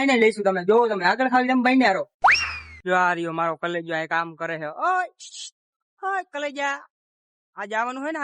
એને લઈશું. તમે જોવો, તમે આગળ ખાલી જેમ બન્યા રહો. જો આ રહ્યો મારો કલેજો આ કામ કરે છે. ઓય ઓય કલેજા, આજે આવવાનું હોય ને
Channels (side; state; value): both; identical; correlation 1.00